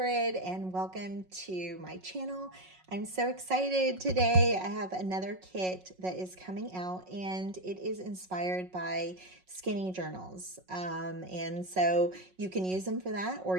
and welcome to my channel. I'm so excited today. I have another kit that is coming out and it is inspired by skinny journals. And so you can use them for that or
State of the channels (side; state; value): left; late; 5.4 ms